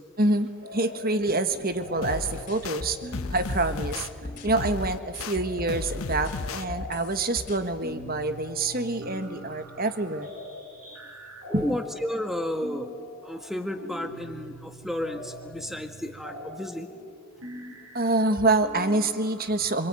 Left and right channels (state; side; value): normal; both; correlation 0.27